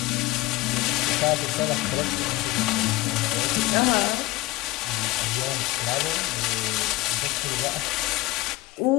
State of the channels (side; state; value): right; quieter; 19.4 dB